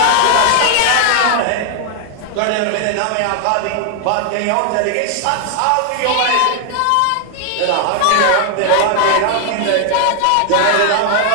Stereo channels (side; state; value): both; different; correlation 0.00